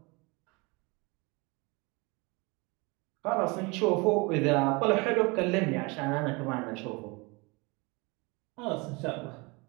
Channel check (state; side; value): quieter; left; 27.1 dB